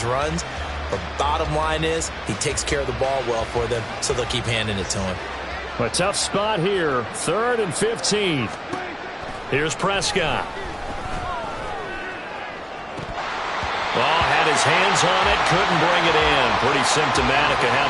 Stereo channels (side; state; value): both; identical; correlation 1.00